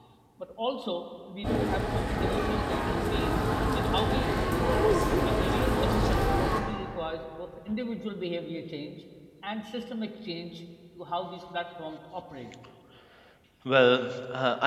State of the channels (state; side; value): identical; both; correlation 1.00